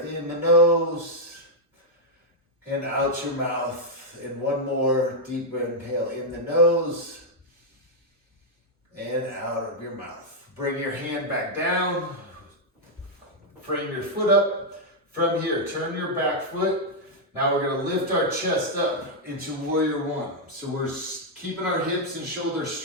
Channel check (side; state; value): both; normal; correlation -0.03